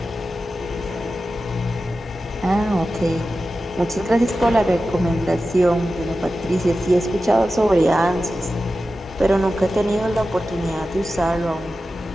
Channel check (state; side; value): normal; both; correlation 0.93